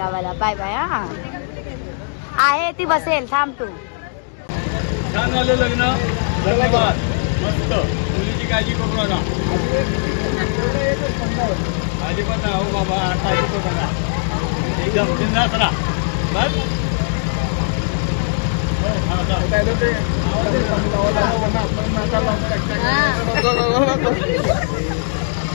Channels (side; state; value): right; silent; digital silence